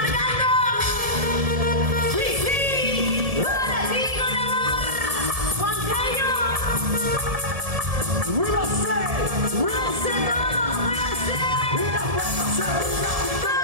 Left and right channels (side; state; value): left; late; 1.7 ms